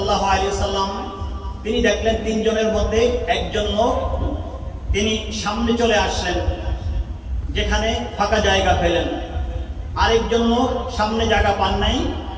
আলাইহি ওয়াসাল্লাম তিনি দেখলেন তিনজনের মধ্যে একজন লোক তিনি সামনে চলে আসলেন, যেখানে ফাঁকা জায়গা পেলেন। আরেকজন লোক সামনে জায়গা পান নাই,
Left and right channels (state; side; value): identical; both; correlation 1.00